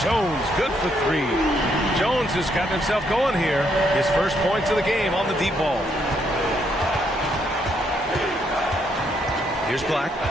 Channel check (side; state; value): both; normal; correlation 0.74